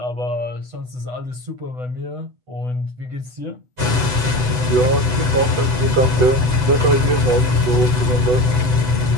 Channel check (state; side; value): late; left; 8.0 ms